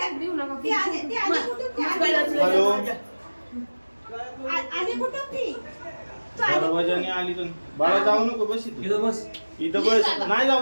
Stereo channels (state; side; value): inverted; both; correlation -1.00